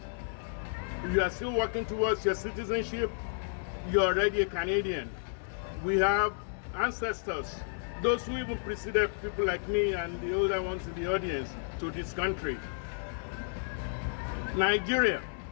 if you are still working towards your citizenship, you're already a Canadian. We have ancestors, those who even preceded people like me and the older ones in the audience to this country. Nigeria,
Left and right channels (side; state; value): right; silent; digital silence